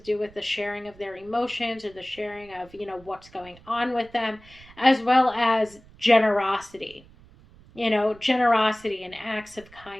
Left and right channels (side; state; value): right; noise; rumble, 24 dB below the sound